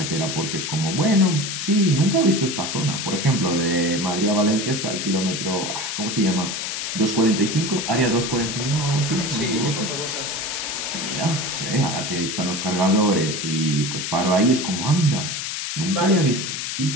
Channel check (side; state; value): left; noise; hiss, 4 dB below the sound